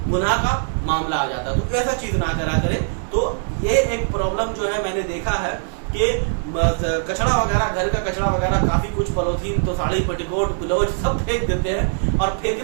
गुनाह का मामला आ जाता है। तो ऐसा चीज ना करा करें। तो ये एक प्रॉब्लम जो है मैंने देखा है कि कचरा वगैरह, घर का कचरा वगैरह, काफी कुछ पॉलिथीन तो साड़ी पेटीकोट ब्लाउज सब फेंक देते हैं, और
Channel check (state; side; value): silent; left; digital silence